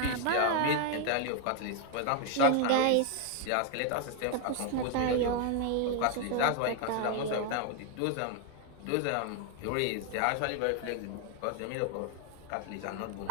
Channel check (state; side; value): different; both; correlation 0.00